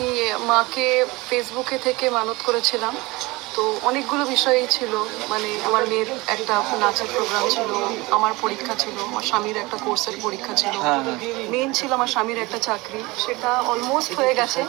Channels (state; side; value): quieter; left; 22.6 dB